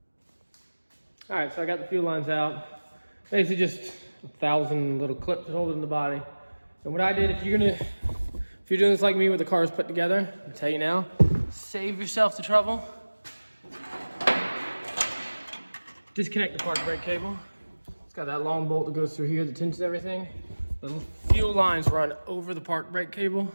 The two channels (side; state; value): both; inverted; correlation -1.00